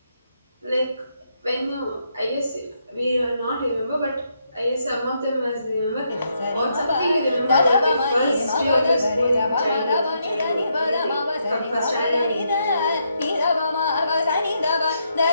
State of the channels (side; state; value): both; inverted; correlation -0.78